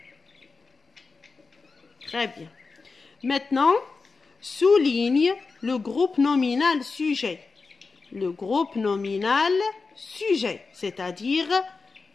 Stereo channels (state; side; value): quieter; right; 4.3 dB